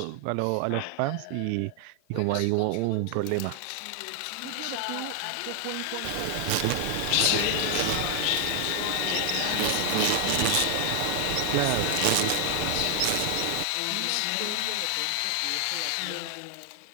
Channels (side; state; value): both; different; correlation 0.00